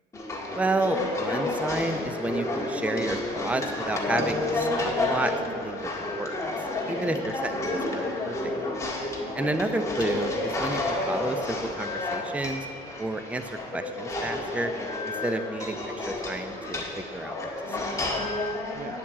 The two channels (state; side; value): normal; both; correlation 0.58